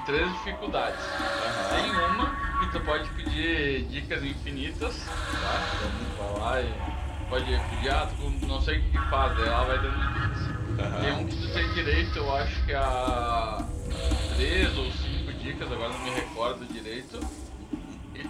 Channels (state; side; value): identical; both; correlation 1.00